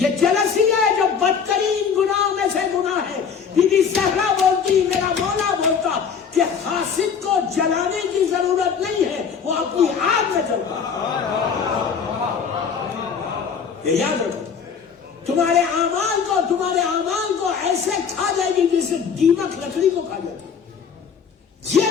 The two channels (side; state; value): right; quieter; 6.6 dB